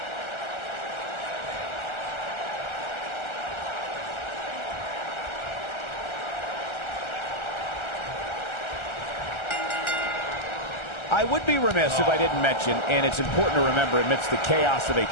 I would be remiss if I didn't mention, and it's important to remember amidst the chaos of a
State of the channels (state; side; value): late; right; 1.3 ms